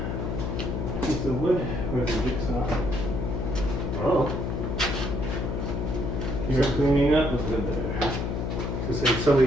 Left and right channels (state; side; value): noise; left; hum, 2 dB below the sound